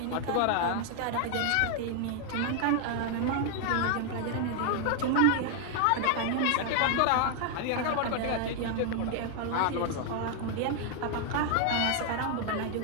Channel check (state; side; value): different; both; correlation 0.00